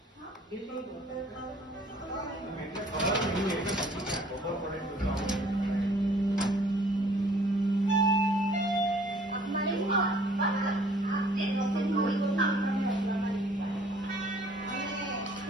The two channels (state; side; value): normal; both; correlation 0.56